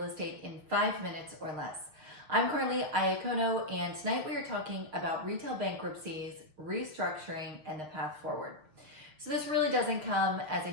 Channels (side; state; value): left; late; 6.5 ms